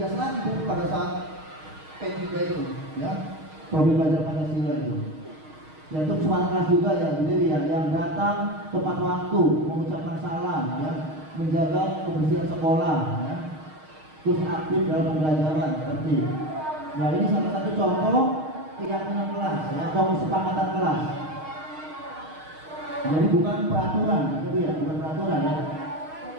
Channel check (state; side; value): late; left; 6.4 ms